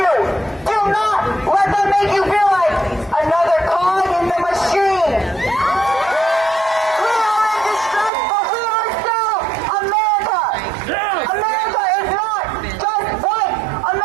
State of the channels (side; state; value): left; drops out; at 8.1 s